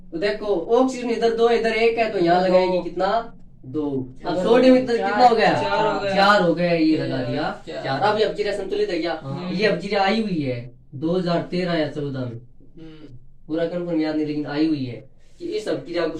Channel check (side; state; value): both; identical; correlation 1.00